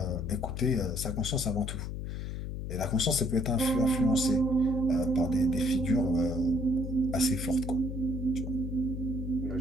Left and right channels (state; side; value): noise; left; hum, 5 dB below the sound